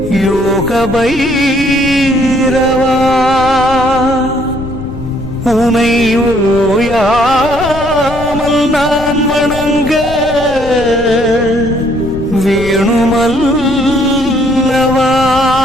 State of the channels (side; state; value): left; noise; rumble, 11 dB below the sound